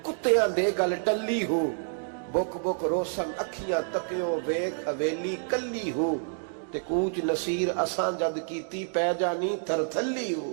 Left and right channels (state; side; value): silent; left; digital silence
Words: کتیاں دے گل ٹلی ہو، بک بک روشن اکھیاں تکیو ویک حویلی کلی ہو، تے کوچ نصیر اساں جد کیتی پہ جانی تھر تھلی